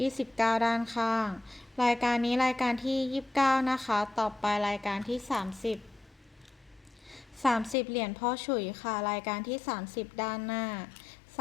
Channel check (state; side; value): drops out; right; at 7.8 s